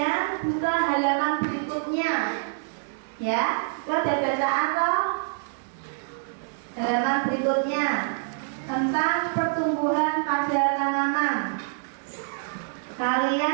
buka halaman berikutnya. Ya, kita udah baca apa? Halaman berikutnya tentang pertumbuhan pada tanaman.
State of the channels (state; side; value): silent; left; digital silence